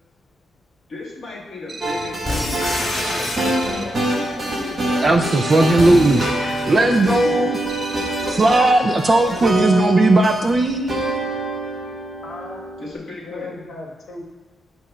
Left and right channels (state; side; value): normal; both; correlation 0.85